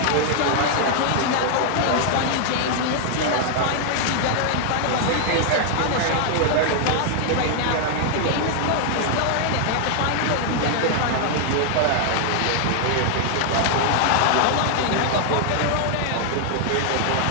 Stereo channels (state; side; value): different; both; correlation 0.00